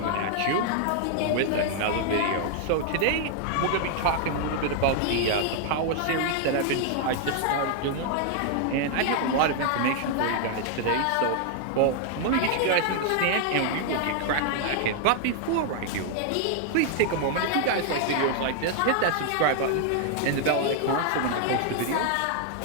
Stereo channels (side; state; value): both; different; correlation 0.00